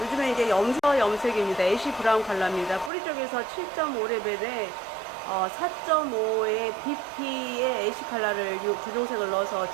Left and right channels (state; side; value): drops out; left; at 2.9 s